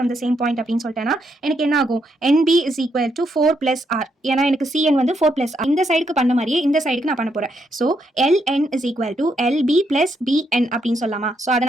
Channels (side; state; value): both; normal; correlation 0.78